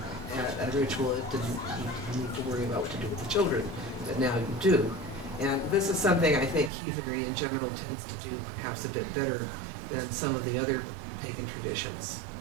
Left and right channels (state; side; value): drops out; left; at 6.7 s